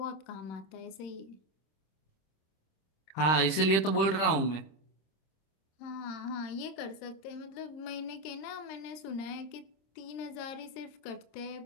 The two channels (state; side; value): late; right; 26 ms